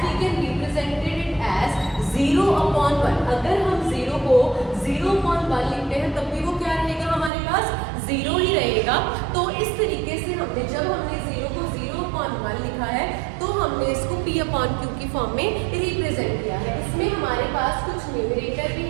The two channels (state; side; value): drops out; left; at 7.3 s